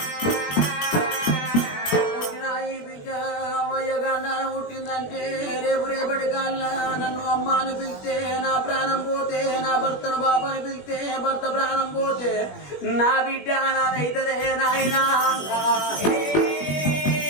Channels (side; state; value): right; late; 21 ms